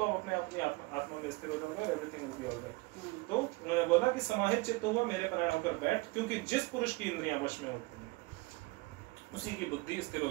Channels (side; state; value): left; quieter; 24.5 dB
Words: आप अपने आत्मा में स्थिर हो जाओगे और एवरीथिंग विल बी ऑलराइट। तो उन्होंने बोला कि समाहित चित्त हुआ मेरे प्राण होकर बैठ, क्योंकि जिस पुरुष की इंद्रियां वश में होती हैं उसी की बुद्धि स्थिर हो